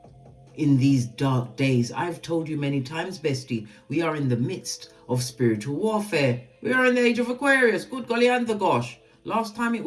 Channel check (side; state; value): both; identical; correlation 1.00